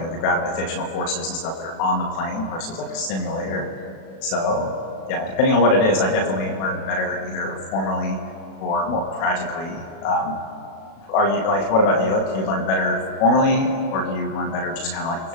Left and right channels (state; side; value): late; right; 36 ms